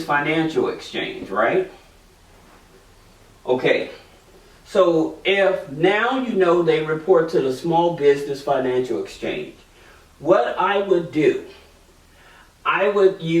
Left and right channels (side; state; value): both; identical; correlation 1.00